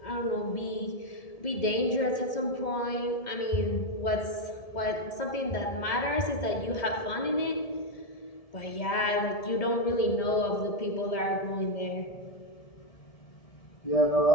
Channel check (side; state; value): right; late; 1.7 ms